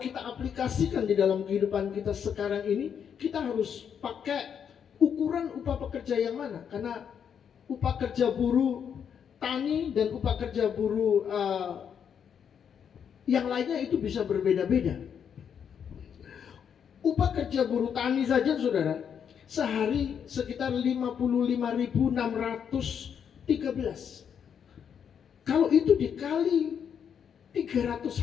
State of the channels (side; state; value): right; quieter; 7.8 dB